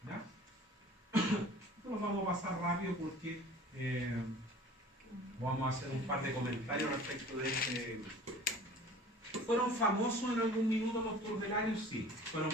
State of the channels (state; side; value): normal; both; correlation 0.45